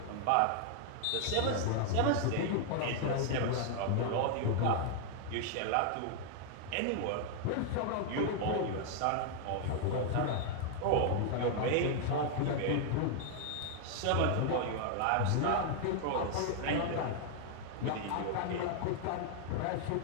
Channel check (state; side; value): different; both; correlation 0.00